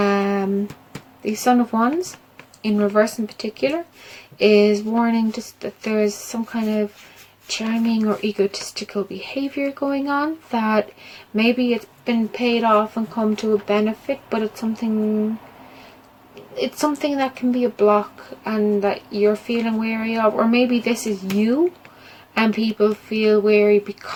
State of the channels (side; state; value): both; identical; correlation 1.00